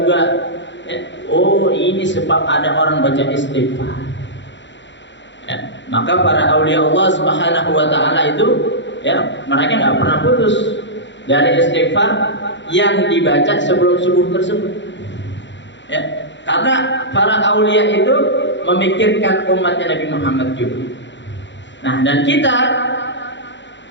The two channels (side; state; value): right; late; 0.53 ms